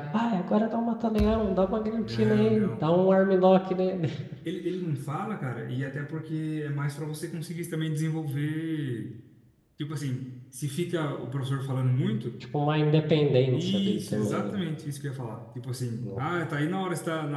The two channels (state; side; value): identical; both; correlation 1.00